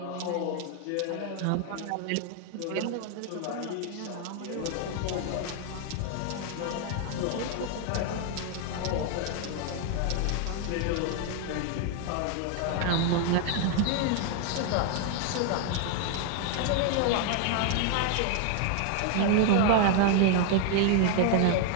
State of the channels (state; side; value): different; both; correlation 0.00